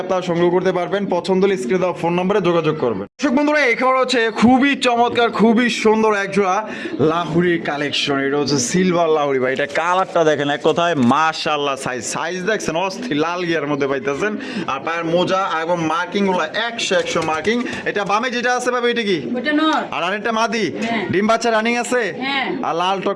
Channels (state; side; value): identical; both; correlation 1.00